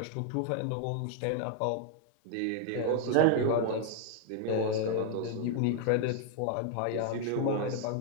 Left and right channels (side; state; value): both; different; correlation 0.00